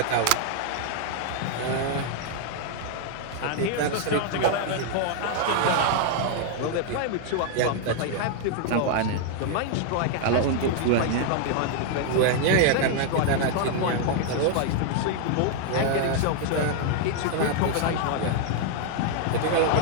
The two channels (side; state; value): both; different; correlation 0.00